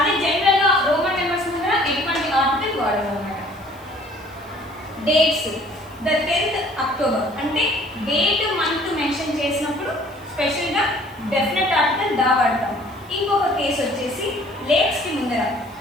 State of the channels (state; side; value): noise; right; hiss, 26 dB below the sound